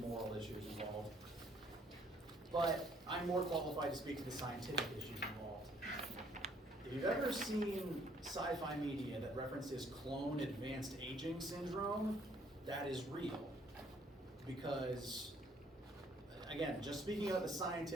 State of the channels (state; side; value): normal; both; correlation 0.64